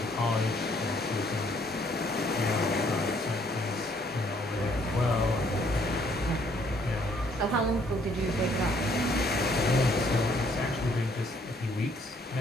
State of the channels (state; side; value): normal; both; correlation 0.65